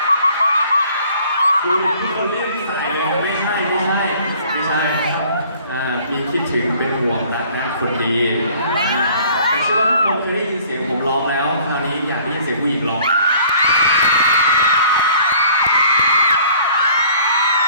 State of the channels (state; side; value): inverted; both; correlation -0.54